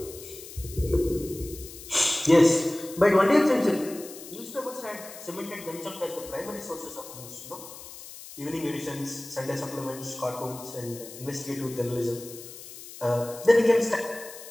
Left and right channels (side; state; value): left; noise; hiss, 15 dB below the sound